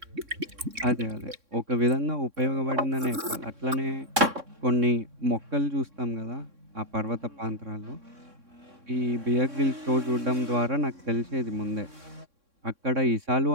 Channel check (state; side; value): late; left; 3.6 ms